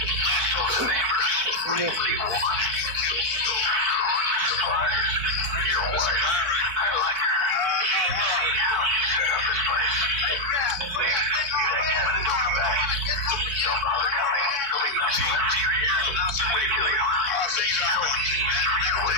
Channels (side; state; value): left; late; 4.5 ms